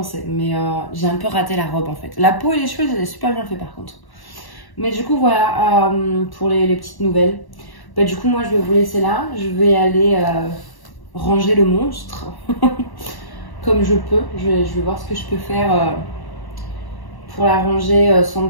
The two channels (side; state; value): right; late; 1.1 ms